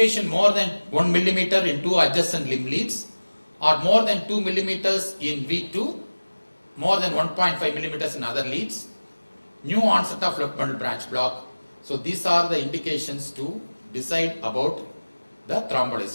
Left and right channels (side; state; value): both; inverted; correlation -1.00